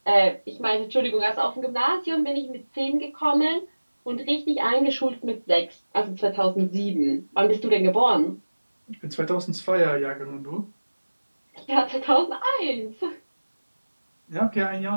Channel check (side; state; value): both; inverted; correlation -1.00